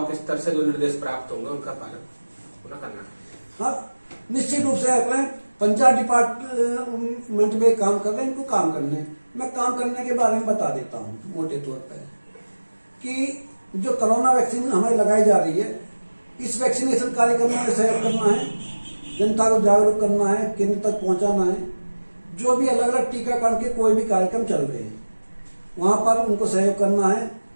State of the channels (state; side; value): inverted; both; correlation -1.00